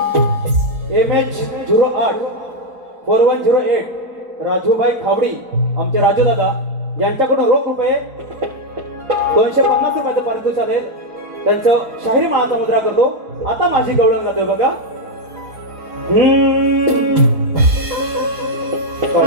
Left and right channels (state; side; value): late; left; 4.4 ms